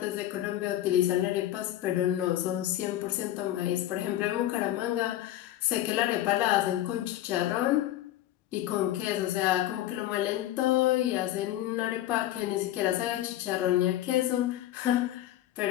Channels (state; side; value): quieter; right; 13.6 dB